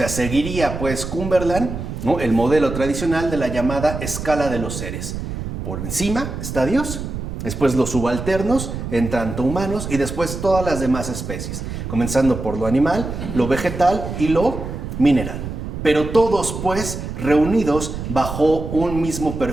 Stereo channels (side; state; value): right; noise; rumble, 6 dB below the sound